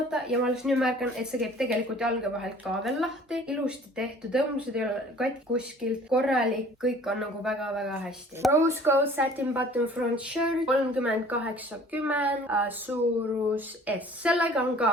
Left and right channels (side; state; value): both; normal; correlation 0.51